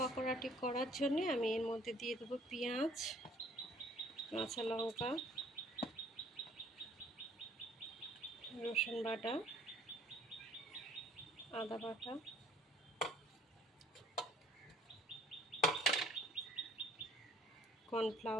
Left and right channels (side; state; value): both; normal; correlation 0.57